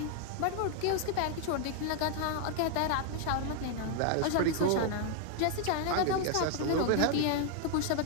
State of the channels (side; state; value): both; different; correlation 0.00